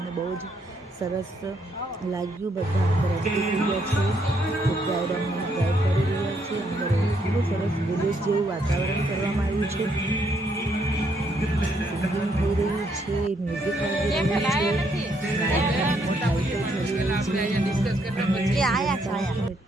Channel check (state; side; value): normal; both; correlation 0.73